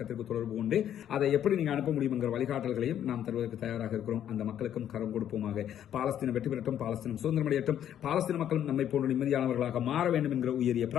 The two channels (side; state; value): right; quieter; 10.3 dB